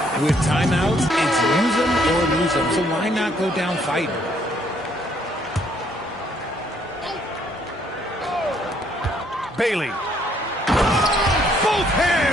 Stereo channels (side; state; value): both; normal; correlation 0.67